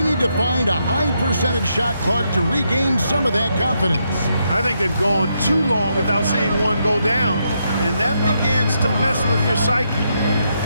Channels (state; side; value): inverted; both; correlation -0.79